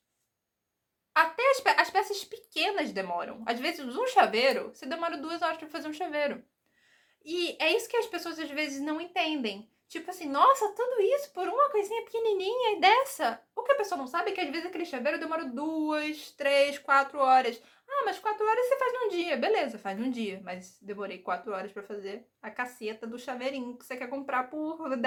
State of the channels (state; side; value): identical; both; correlation 1.00